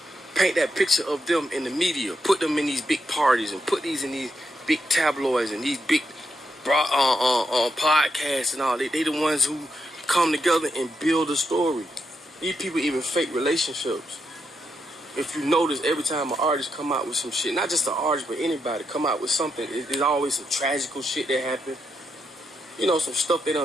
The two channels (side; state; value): both; normal; correlation 0.82